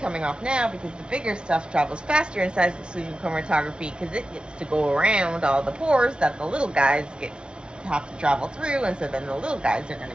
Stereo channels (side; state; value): left; late; 0.055 ms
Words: off now because the bigger stuff travels faster in size exclusion chromatography because it gets to go around all the pores that the little guys have to travel through, and so then the little guys are going